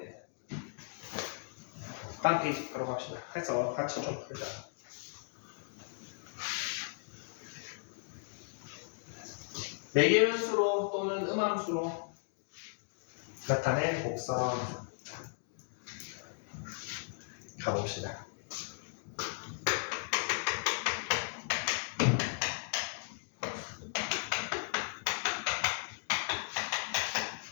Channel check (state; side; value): silent; right; digital silence